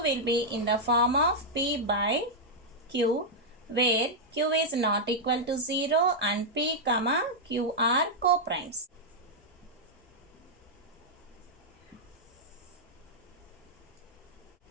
will be in the form of p by q, where q is not equal to 0 and p comma q are co-primes.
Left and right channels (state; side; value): normal; both; correlation -0.05